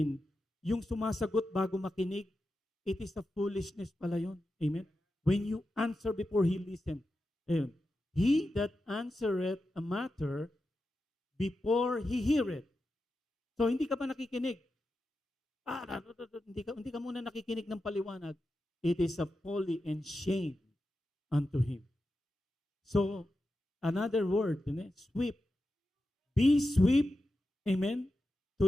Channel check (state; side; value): normal; both; correlation 0.90